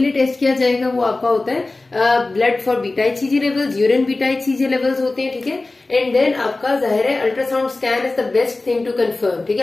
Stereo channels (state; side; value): quieter; right; 3.2 dB